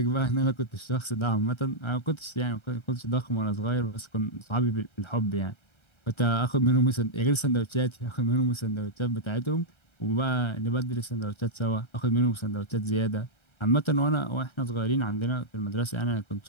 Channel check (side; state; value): right; late; 1.3 ms